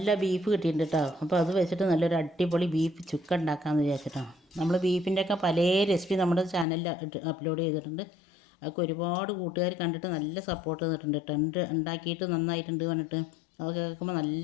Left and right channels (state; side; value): drops out; right; at 6.7 s